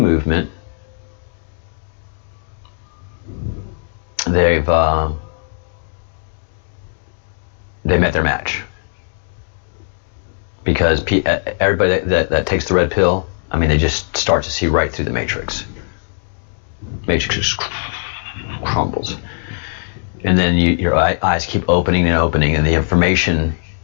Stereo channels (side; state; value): right; silent; digital silence